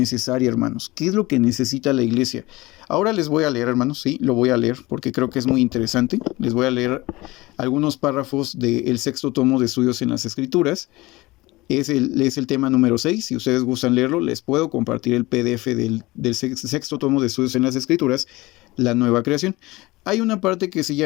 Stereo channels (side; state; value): right; quieter; 20.7 dB